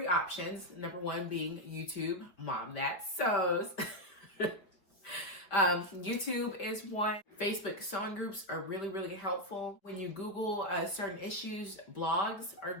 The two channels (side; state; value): right; late; 5.3 ms